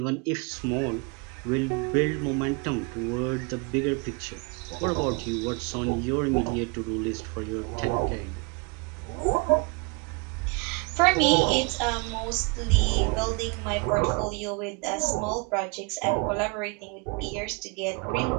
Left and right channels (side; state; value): left; quieter; 30.5 dB